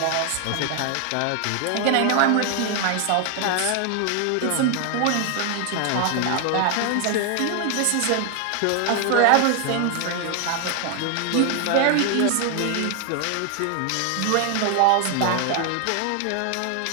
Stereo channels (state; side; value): different; both; correlation 0.00